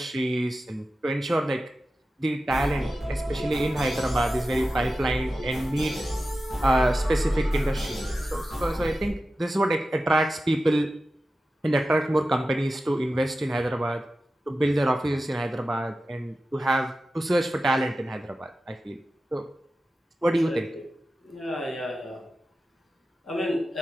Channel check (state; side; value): normal; both; correlation 0.93